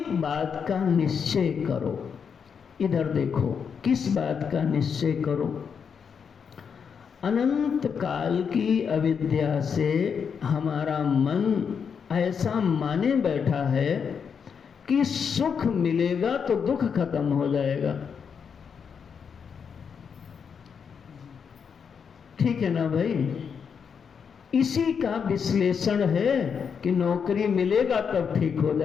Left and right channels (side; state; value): right; quieter; 6.6 dB